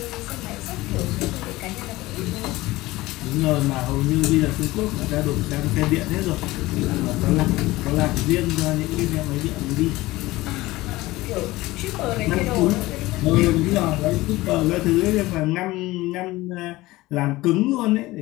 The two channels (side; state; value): right; quieter; 18.9 dB